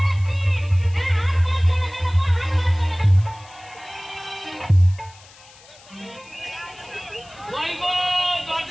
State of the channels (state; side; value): noise; left; hiss, 24 dB below the sound